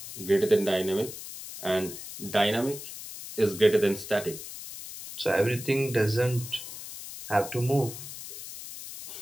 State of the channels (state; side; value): noise; left; hiss, 11 dB below the sound